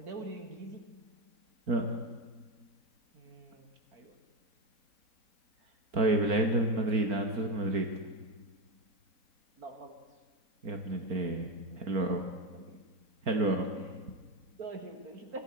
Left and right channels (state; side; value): late; left; 4.4 ms